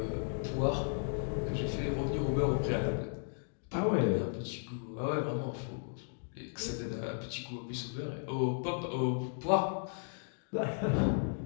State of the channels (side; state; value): right; silent; digital silence